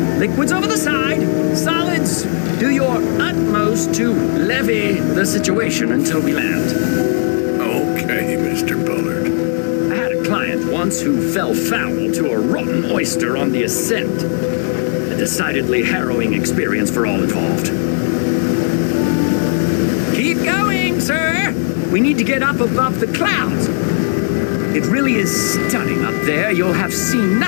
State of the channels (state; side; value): silent; right; 64 dB below the other